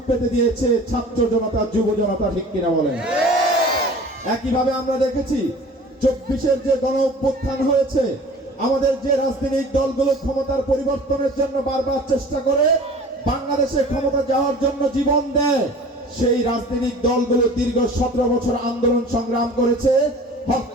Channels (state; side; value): normal; both; correlation 0.44